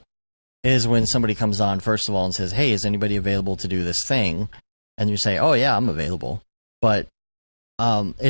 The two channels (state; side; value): inverted; both; correlation -1.00